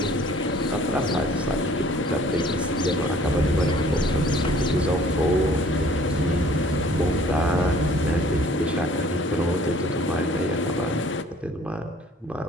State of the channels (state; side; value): normal; both; correlation 0.54